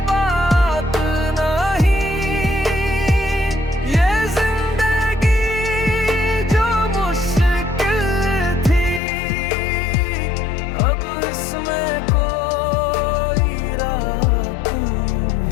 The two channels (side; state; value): right; drops out; at 9.0 s